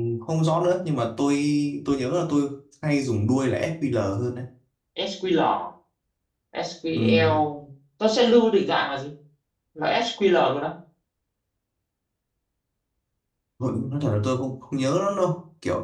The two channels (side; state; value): both; identical; correlation 1.00